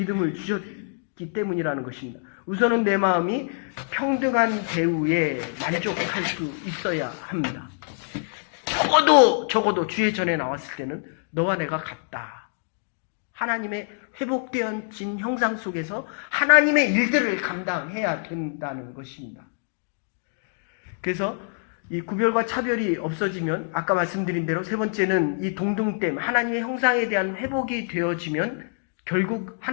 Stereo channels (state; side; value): silent; right; digital silence